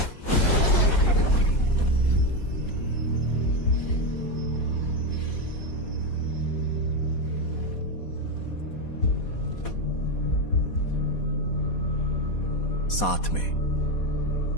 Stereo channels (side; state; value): right; late; 4.2 ms